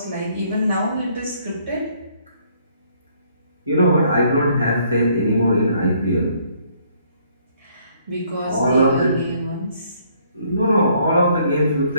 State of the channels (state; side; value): inverted; both; correlation -0.65